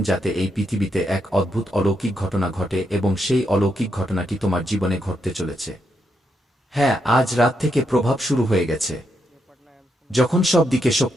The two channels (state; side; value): normal; both; correlation 0.81